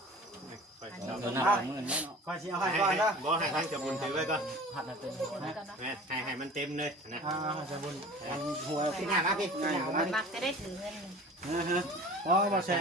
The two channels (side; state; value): both; normal; correlation 0.42